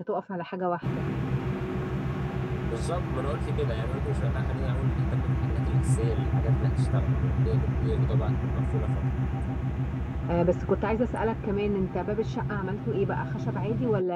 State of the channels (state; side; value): identical; both; correlation 1.00